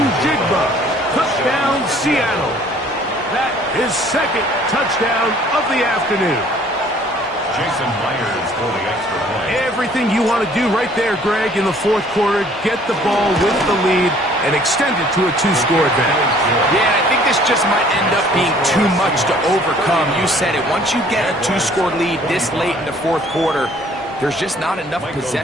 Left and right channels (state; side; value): normal; both; correlation 0.56